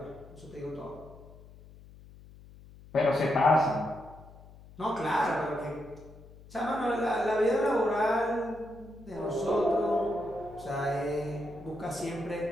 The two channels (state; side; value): noise; left; hum, 20 dB below the sound